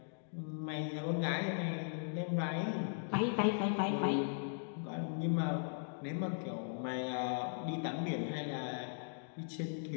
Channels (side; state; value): right; silent; digital silence